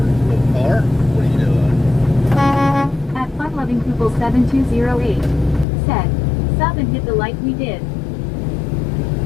little car. What are you doing? At FunLovingPeople7208. Said, sub and hit the like we did.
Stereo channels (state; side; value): drops out; right; at 5.7 s